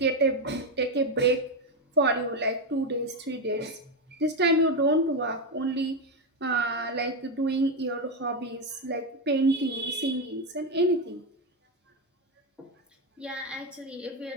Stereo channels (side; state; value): both; normal; correlation 0.08